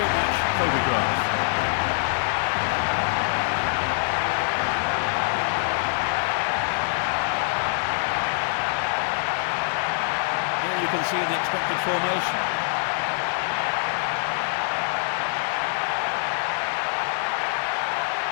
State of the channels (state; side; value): silent; right; digital silence